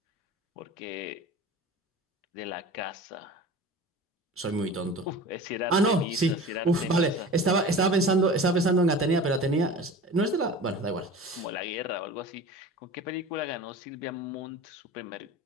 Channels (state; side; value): normal; both; correlation 0.36